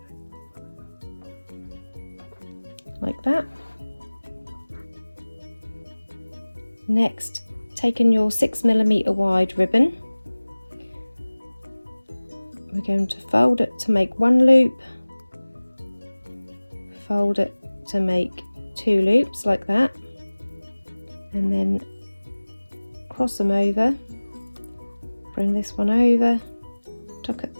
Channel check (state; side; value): inverted; both; correlation -1.00